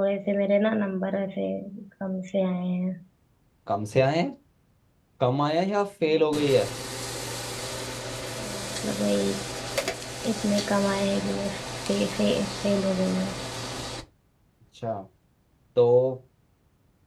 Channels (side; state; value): both; identical; correlation 1.00